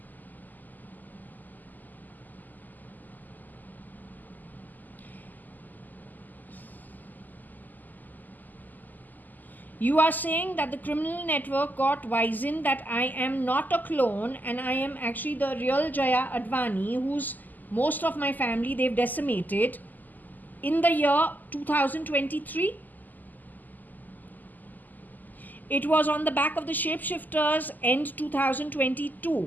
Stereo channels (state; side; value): late; right; 0.084 ms